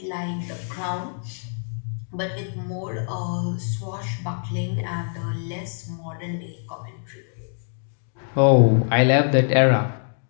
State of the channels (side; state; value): right; silent; digital silence